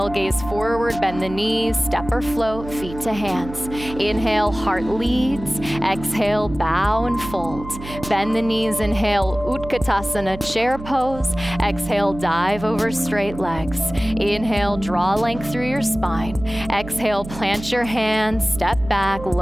gaze forward, bend the knees, step or float, feet to hands. Inhale, heart leads. Exhale, bow and fold. Bend the knees, inhale, Utkatasana, chair pose. Exhale, dive over straight legs. Inhale, draw length through your spine. Exhale, plant your hands, step back,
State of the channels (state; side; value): noise; right; hum, 12 dB below the sound